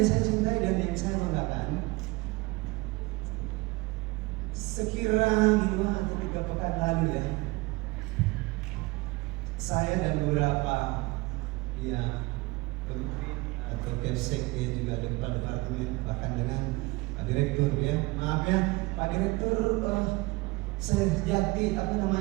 saya cintai dan yang saya banggakan, sekira 2 atau 3 pekan lalu saya dan beberapa menteri atau Kepsek juga ada kepala departemen, bahkan dengan Pak Direktur maaf Pak Direktur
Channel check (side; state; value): left; quieter; 23.0 dB